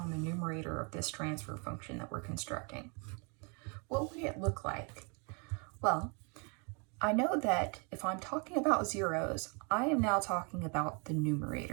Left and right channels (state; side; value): quieter; left; 35.2 dB